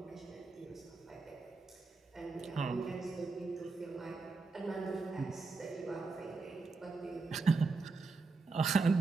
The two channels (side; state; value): left; quieter; 4.0 dB